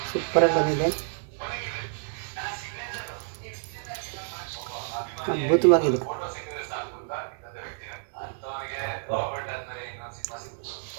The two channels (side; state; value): left; silent; digital silence